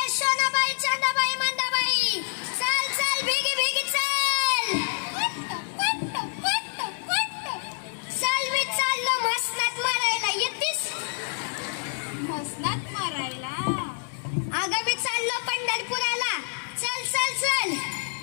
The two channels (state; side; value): silent; right; digital silence